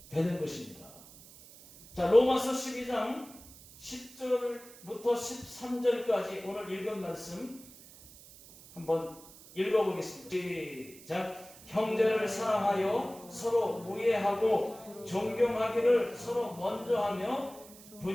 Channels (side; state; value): right; noise; hiss, 20 dB below the sound